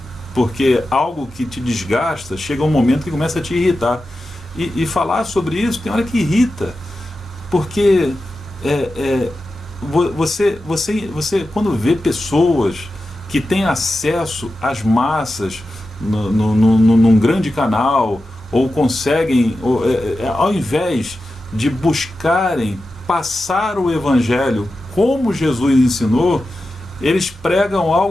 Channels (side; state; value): both; normal; correlation 0.92